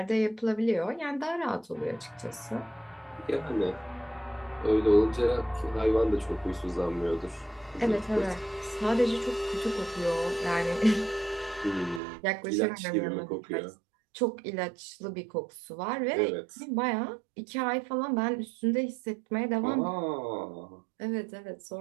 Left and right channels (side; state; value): left; drops out; at 12.0 s